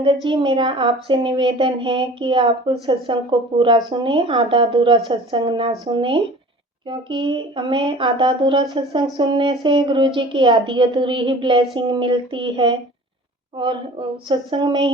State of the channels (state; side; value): normal; both; correlation 0.43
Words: जी, मेरा आपसे निवेदन है कि आप सत्संग को पूरा सुने, आधा अधूरा सत्संग ना सुने, क्योंकि हमें आधा अधूरा सत्संग सुनने से गुरु जी की आधी अधूरी ही ब्लेसिंग मिलती है, और सत्संग में